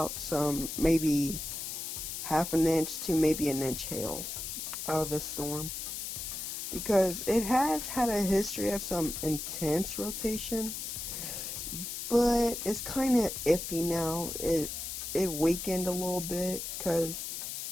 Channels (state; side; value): noise; left; hiss, 5 dB below the sound